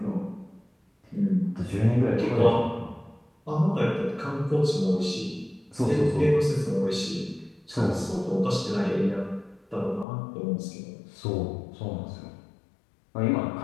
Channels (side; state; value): right; drops out; at 10.1 s